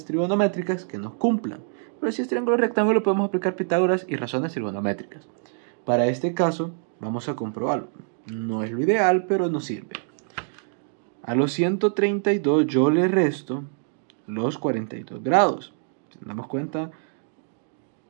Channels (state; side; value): silent; left; digital silence